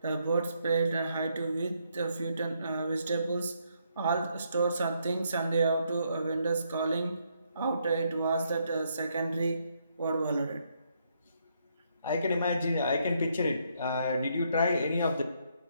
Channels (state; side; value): inverted; both; correlation -0.74